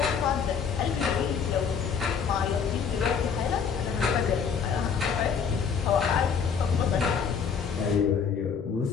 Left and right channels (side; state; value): right; quieter; 6.5 dB